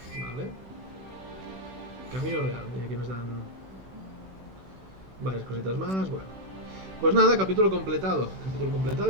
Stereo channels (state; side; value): late; left; 16 ms